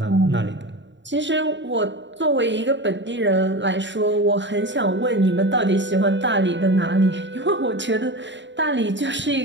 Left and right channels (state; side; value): late; left; 0.53 ms